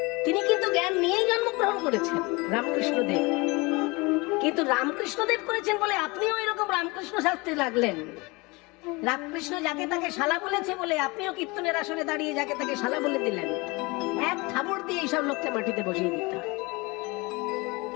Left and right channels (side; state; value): right; quieter; 25.3 dB